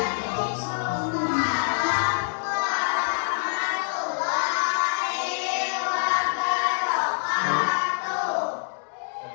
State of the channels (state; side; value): silent; right; digital silence